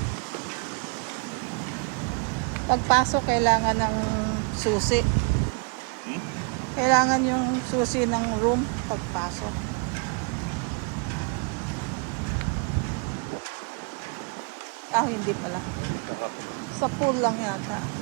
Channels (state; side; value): quieter; left; 34.9 dB